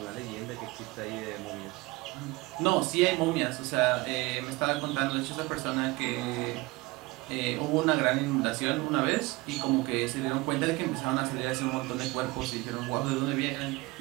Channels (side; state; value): left; quieter; 22.1 dB